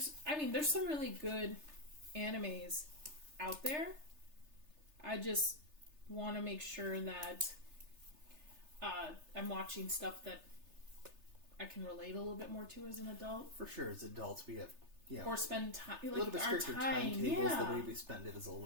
some really good animes out there. I just want to make sure that I'm watching stuff that I can relate a little bit more to as an adult. For sure, as adults, we have or spend time like a little bit stricter timetables. Yeah. The way we spend it is a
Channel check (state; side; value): late; left; 3.3 ms